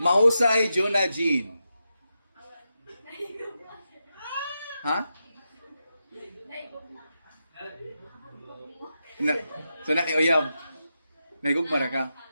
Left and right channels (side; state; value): both; inverted; correlation -0.88